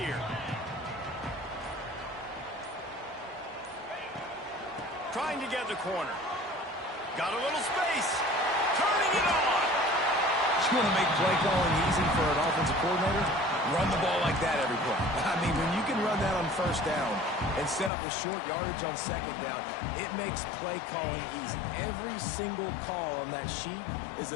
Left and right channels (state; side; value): drops out; right; at 17.9 s